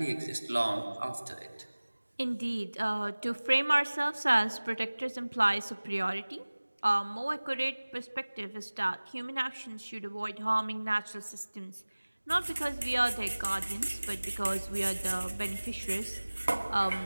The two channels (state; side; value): inverted; both; correlation -1.00